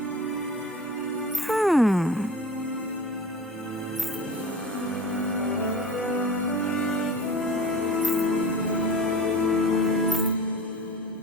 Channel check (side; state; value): both; normal; correlation 0.36